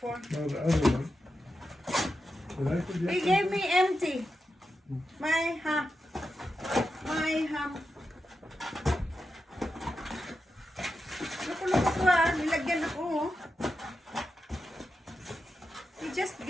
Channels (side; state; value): both; normal; correlation 0.89